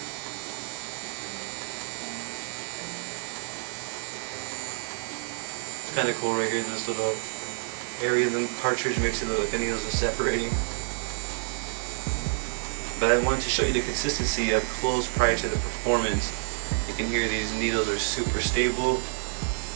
Kind of cool right here, this little area of the cartridge makes it look like the needles are separating. But I wanted to show you the consistency up close prior to the performance. You can hear these needles are super stable.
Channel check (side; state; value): left; silent; 59 dB below the other